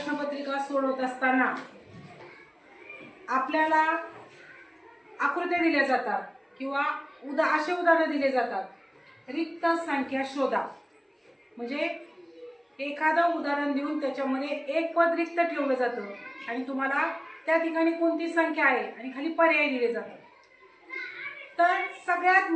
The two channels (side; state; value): both; identical; correlation 1.00